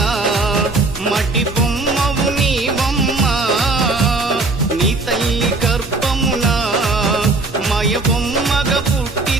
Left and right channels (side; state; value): left; quieter; 3.3 dB